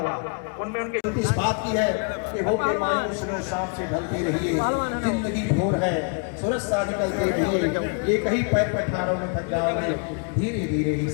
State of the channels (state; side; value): quieter; right; 38.7 dB